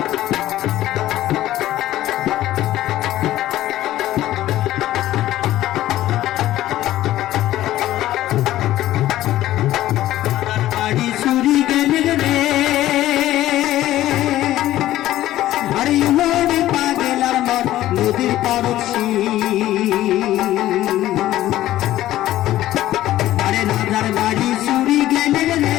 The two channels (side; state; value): right; quieter; 14.3 dB